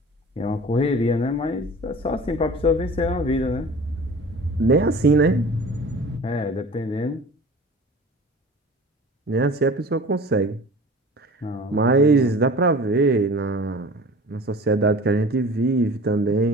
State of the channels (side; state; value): both; normal; correlation 0.41